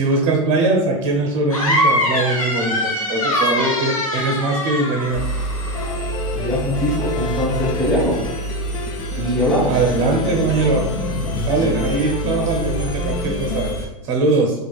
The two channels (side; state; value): both; normal; correlation 0.15